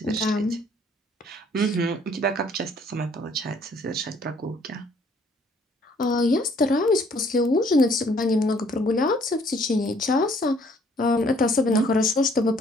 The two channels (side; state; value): both; normal; correlation 0.61